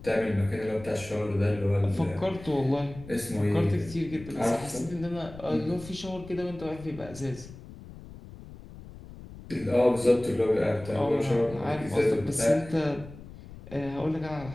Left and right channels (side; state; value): left; noise; rumble, 16 dB below the sound